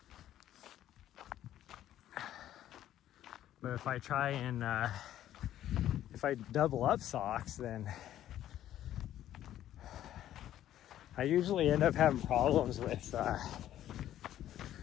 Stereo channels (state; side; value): quieter; right; 12.2 dB